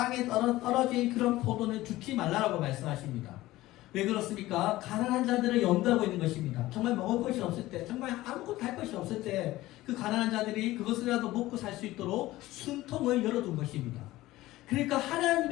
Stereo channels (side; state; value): right; quieter; 17.1 dB